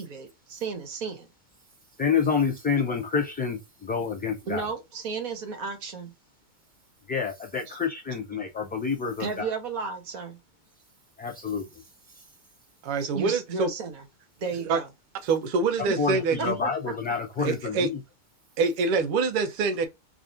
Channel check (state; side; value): late; left; 2.2 ms